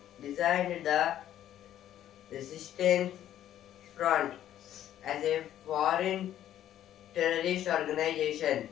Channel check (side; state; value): right; quieter; 11.7 dB